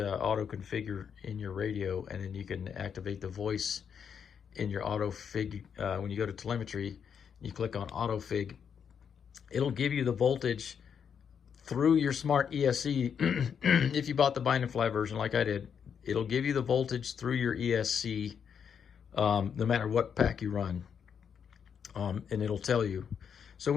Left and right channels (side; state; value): right; quieter; 7.4 dB